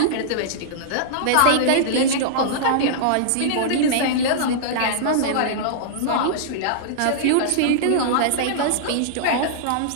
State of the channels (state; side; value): different; both; correlation -0.02